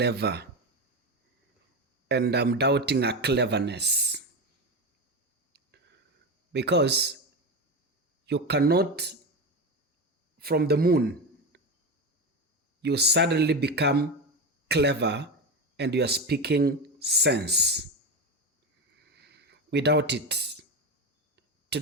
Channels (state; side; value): normal; both; correlation 0.18